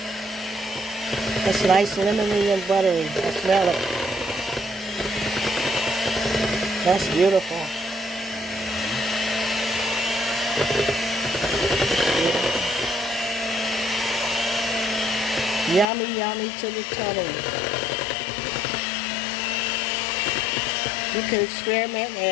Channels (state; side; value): drops out; right; at 15.9 s